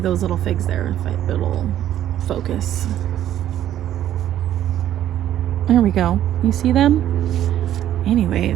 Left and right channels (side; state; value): left; quieter; 11.8 dB